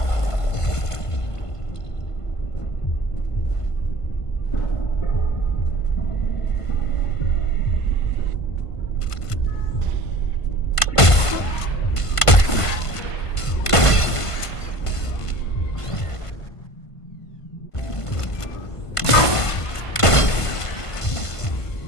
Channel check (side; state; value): right; late; 1.5 ms